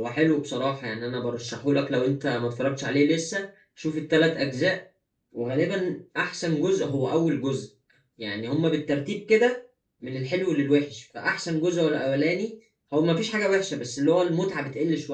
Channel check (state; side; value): identical; both; correlation 1.00